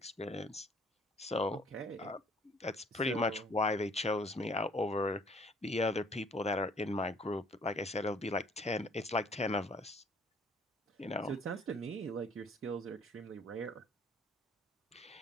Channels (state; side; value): normal; both; correlation 0.58